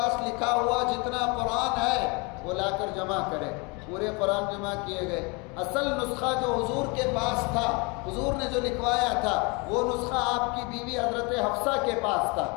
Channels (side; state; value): right; quieter; 29.8 dB